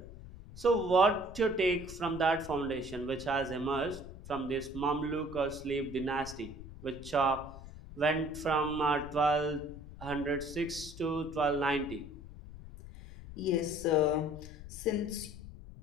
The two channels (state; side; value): noise; left; rumble, 14 dB below the sound